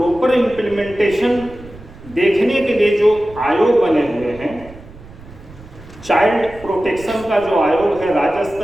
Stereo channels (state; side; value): noise; right; rumble, 19 dB below the sound